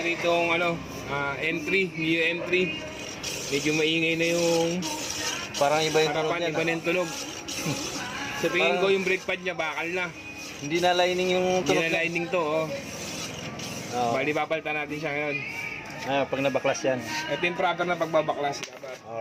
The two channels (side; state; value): both; identical; correlation 1.00